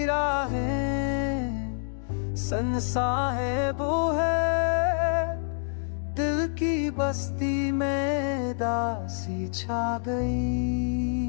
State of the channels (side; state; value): right; silent; digital silence